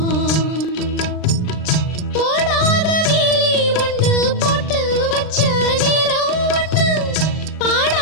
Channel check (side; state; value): right; late; 39 ms